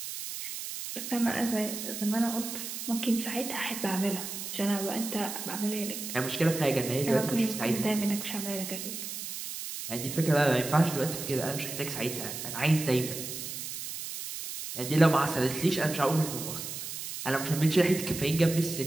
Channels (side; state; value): right; noise; hiss, 7 dB below the sound